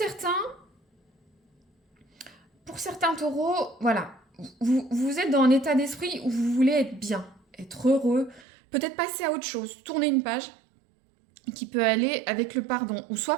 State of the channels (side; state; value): left; drops out; at 8.5 s